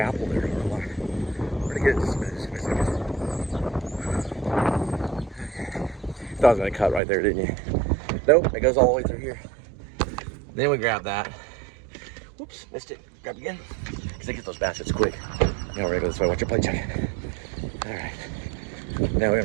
there. I'm like, where to get this? Thought I was gonna cut right there, didn't you? Nope, it goes all the way through here. Then we grab that. Whoops, missed it. Grab it again. Because they get those baskets quick. Now we're gonna go this way. Watch your plate check. All right. Now we're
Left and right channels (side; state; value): left; drops out; at 7.0 s